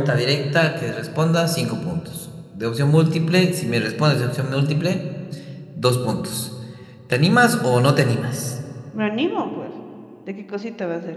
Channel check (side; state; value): both; identical; correlation 1.00